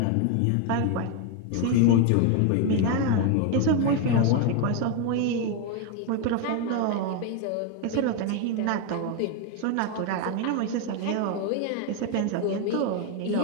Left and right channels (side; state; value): both; different; correlation 0.01